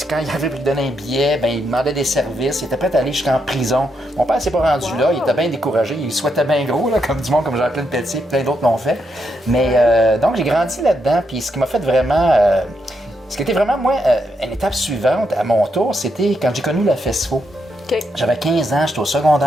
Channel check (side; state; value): both; normal; correlation 0.81